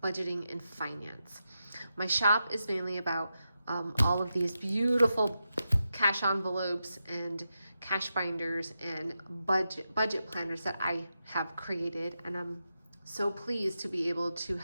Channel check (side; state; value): both; inverted; correlation -0.88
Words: budgeting and finance. My shop is mainly about all of these beautiful cash envelopes and cash binders and budget planners that I have created, and I'm so pleased to be able to